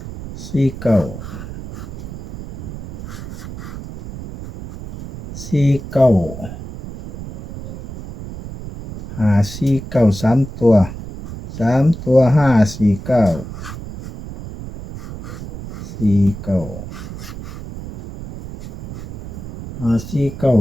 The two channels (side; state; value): right; noise; rumble, 11 dB below the sound